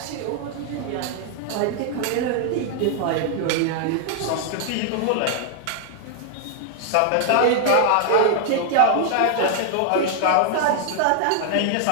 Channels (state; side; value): different; both; correlation 0.00